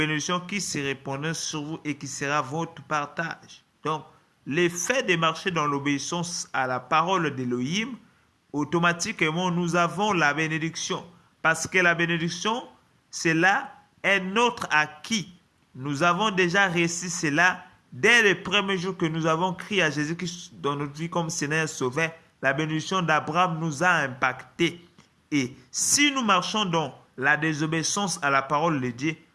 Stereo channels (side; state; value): both; identical; correlation 1.00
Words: qui se répandront sur vous et qui sera votre partage. Donc, l'effet de marcher dans l'obéissance à la parole d'Élohim, automatiquement, nous avons la bénédiction. Parce que la bénédiction, cela est notre acquis. Nous avons déjà réussi cela dès le premier jour que nous avons crié à Jésus-Christ dans notre vie comme Seigneur Sauveur. La bénédiction d'Abraham nous a impactés. Et si nous marchons dans la désobéissance à la parole de Dieu,